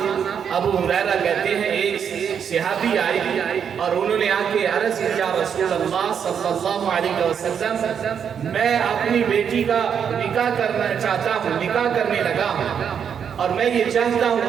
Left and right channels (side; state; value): left; quieter; 7.7 dB